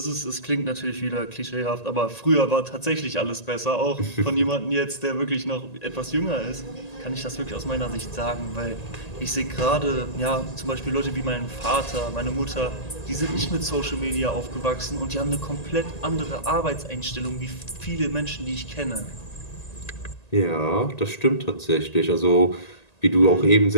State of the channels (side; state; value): right; late; 1.9 ms